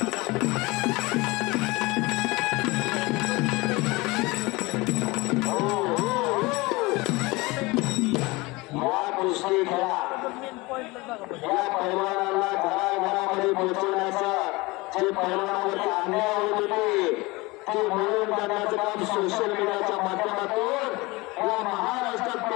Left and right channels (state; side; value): quieter; right; 23.2 dB